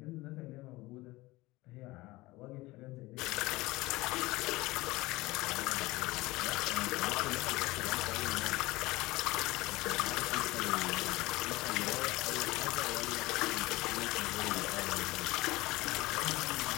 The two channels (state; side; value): quieter; right; 20.2 dB